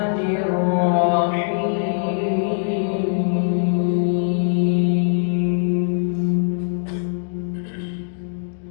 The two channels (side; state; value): right; silent; digital silence